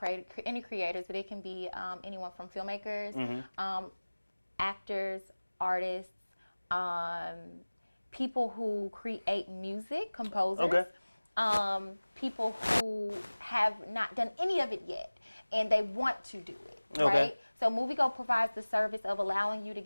creators, but it can be anyone from filmmakers, actors, artists, people who create music, composers, people who have not done any of it yet and they want to do it, right? So Moviego provides the service of allowing you to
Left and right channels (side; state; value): both; inverted; correlation -1.00